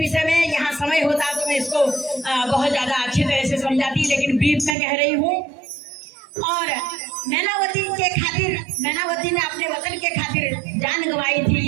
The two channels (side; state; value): left; drops out; at 4.8 s